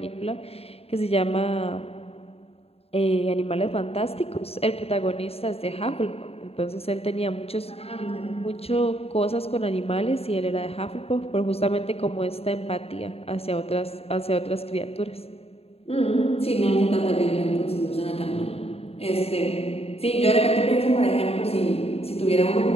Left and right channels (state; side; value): late; right; 0.29 ms